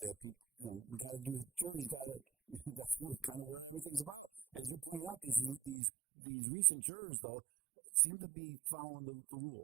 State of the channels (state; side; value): drops out; left; at 5.8 s